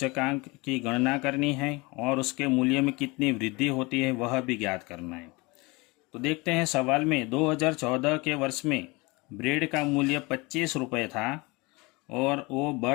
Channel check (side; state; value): right; quieter; 25.2 dB